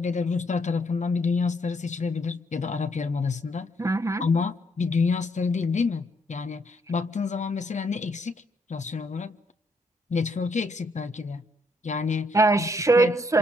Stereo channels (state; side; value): normal; both; correlation 0.72